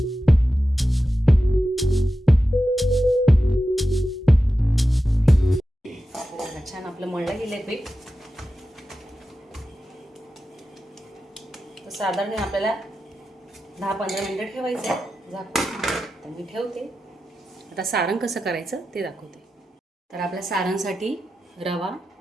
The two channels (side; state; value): both; normal; correlation 0.92